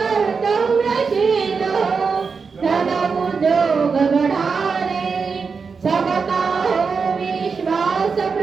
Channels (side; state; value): left; quieter; 5.2 dB